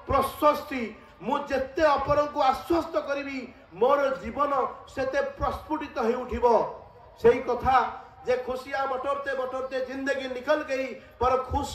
प्रशस्ति मु जेते अपर को आश्वस्त करी मोर जीवन सेते प्रस्फुटित हो उठिबो। सेही कथा जे खुशियां बटोरते बटोरते जिंदगी निकल गई पर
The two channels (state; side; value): identical; both; correlation 1.00